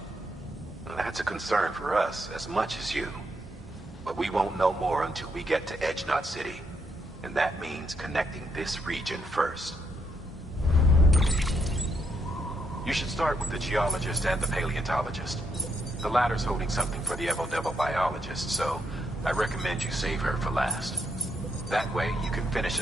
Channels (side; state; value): both; normal; correlation 0.78